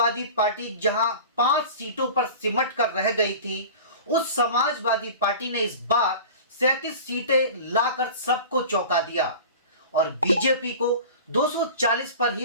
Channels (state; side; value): inverted; both; correlation -0.37